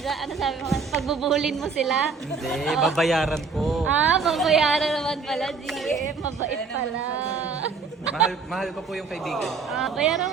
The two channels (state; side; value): quieter; left; 4.9 dB